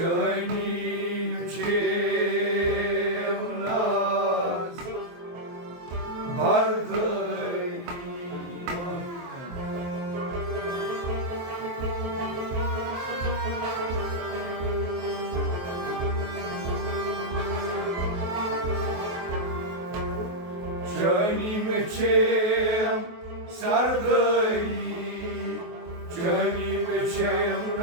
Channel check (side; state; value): left; late; 23 ms